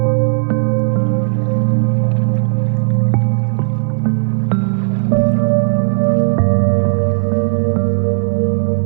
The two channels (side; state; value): left; silent; digital silence